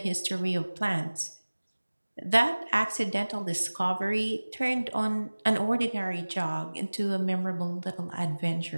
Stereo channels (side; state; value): both; inverted; correlation -1.00